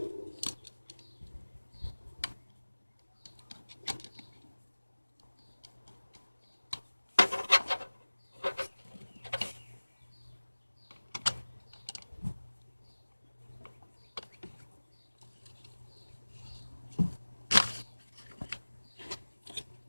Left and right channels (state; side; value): inverted; both; correlation -1.00